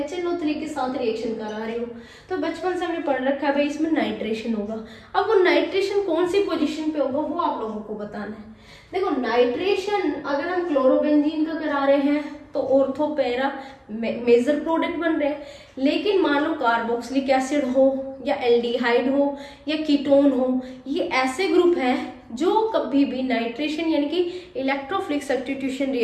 के साथ रिएक्शन करा रहे हो। तो बचपन से हमने पढ़ रखा है भाई इसमें नाइट्रेशन होगा। अब वो नाइट्रेशन कौन सी पोजीशन पे होगा वो आप लोगों को बताना है। देखो नाइट्रेशन अगर हम क्लोरोबेंजीन का करा रहे हैं तो ऑर्थो पैरा मेजर प्रोडक्ट बन रहे हैं, लेकिन मान लो कार्बोक्सिलिक एसिड हो या एल्डिहाइड हो या कीटोन हो, ये ऐसे ग्रुप हैं जो कभी भी नाइट्रेशन यानी कि इलेक्ट्रोफिलिक सब्स्टिट्यूशन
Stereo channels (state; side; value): identical; both; correlation 1.00